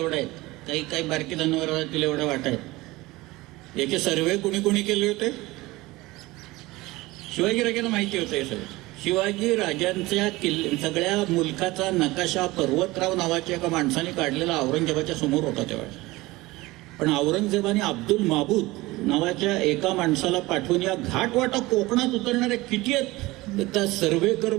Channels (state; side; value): quieter; left; 20.3 dB